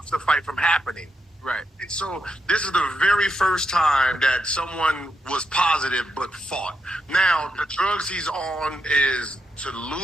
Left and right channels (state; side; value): normal; both; correlation 0.83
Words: the fight from happening. Right. And so this is the very first time that someone was positive but fought. Now, the drugs he's on is to